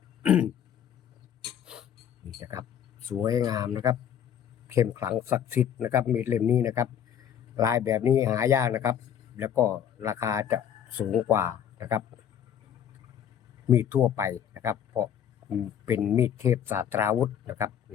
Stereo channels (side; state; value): right; quieter; 9.2 dB